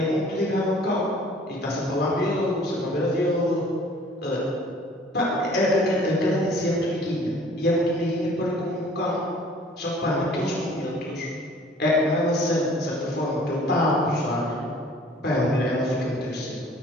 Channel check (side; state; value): both; normal; correlation 0.52